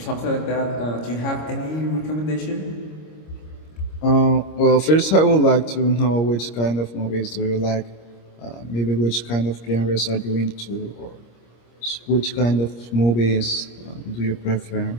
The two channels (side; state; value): right; late; 25 ms